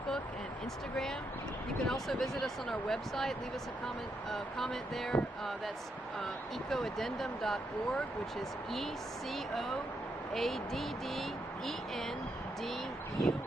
and Instagram. You can also visit us on our website. Leave us a comment there. That's Eco-Addendum.org, which is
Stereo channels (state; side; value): normal; both; correlation 0.80